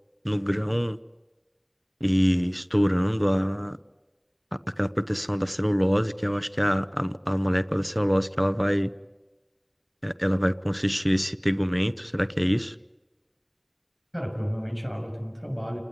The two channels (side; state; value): both; identical; correlation 1.00